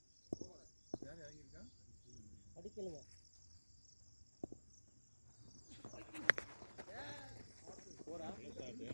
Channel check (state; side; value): inverted; both; correlation -1.00